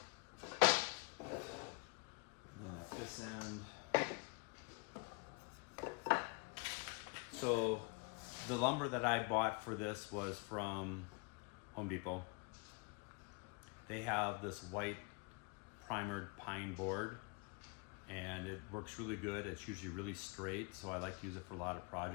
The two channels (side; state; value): right; quieter; 31.4 dB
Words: And then at this end. So the lumber that I bought for this was from Home Depot. They have this white primered pine board, and it works really good. It's usually really straight, so I like to use it for a lot of